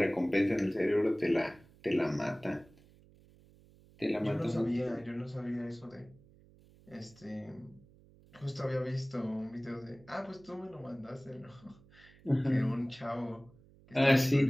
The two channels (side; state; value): right; noise; hum, 26 dB below the sound